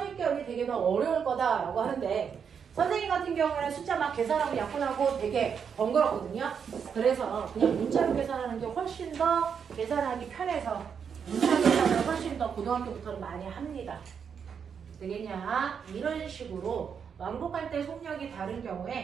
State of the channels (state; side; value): quieter; left; 7.0 dB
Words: 되게 더 어려울 거다라고 하는데 선생님 같은 경우에는 숫자 막 계산하고 약분하고 되게 번거롭거든요. 그래서 그냥 문자로 계산하는 게 훨씬 더 계산하기 편해서 문자 계산을 훨씬 더 고등학교부터는 많이 합니다. 되겠냐? 이런 식으로 왕복할 때 속력이 다른